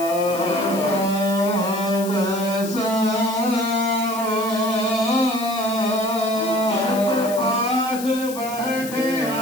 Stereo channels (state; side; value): noise; left; hiss, 12 dB below the sound